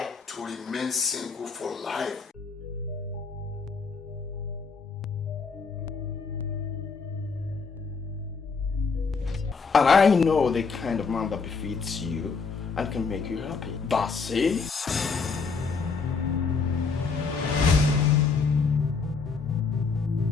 To remain single for life. And I know the kind of man that befits you and can make you happy. That's it.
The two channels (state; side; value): quieter; right; 4.9 dB